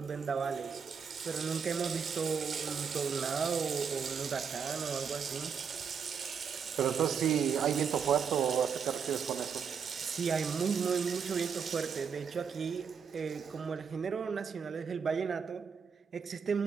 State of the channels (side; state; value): left; quieter; 6.5 dB